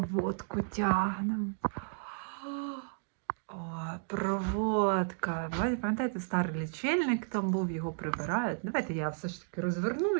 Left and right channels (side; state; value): left; silent; digital silence